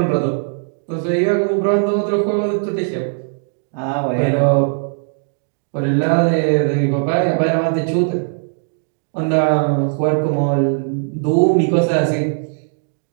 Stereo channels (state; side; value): silent; left; 67 dB below the other